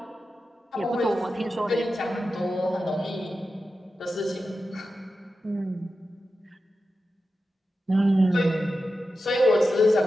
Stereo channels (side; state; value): both; normal; correlation 0.91